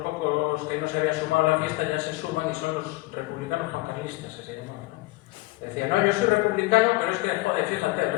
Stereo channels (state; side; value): quieter; right; 20.8 dB